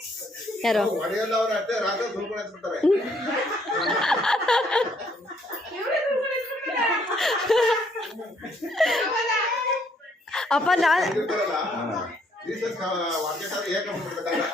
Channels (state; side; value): normal; both; correlation 0.68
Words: ಯಾರು ಹೊಡೆಯಲ್ಲ ಅವ್ರ ಅಷ್ಟೇ ರಾತ್ರಿ ಸುಳ್ಕೊಂಡು ಬಿಡ್ತಾರೆ. ಅಪ್ಪ ನಾನು